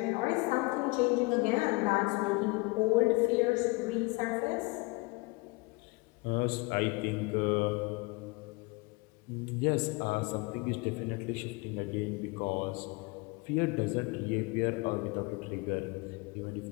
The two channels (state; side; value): quieter; right; 25.9 dB